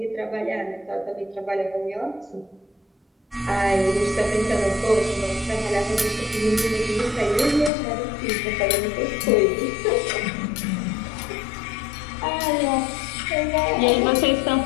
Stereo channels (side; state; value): right; drops out; at 7.7 s